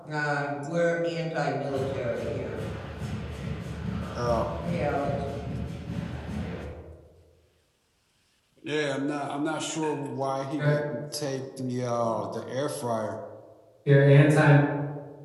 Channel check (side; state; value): both; identical; correlation 1.00